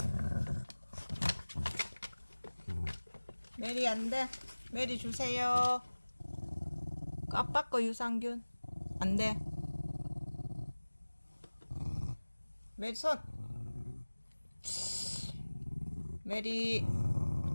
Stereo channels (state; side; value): inverted; both; correlation -1.00